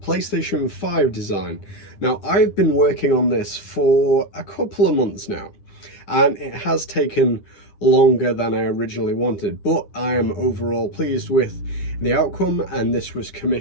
5 design. Now, I've been working on this for a couple of months now, and it has taken longer than I originally wanted, but I am overall pleased with the outcome, and this was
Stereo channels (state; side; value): late; right; 10 ms